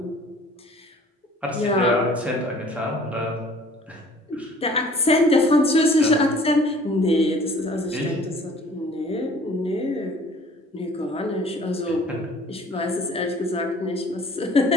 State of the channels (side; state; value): both; normal; correlation 0.52